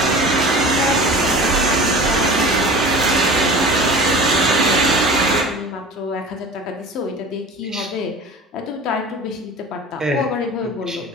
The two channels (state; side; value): normal; both; correlation 0.37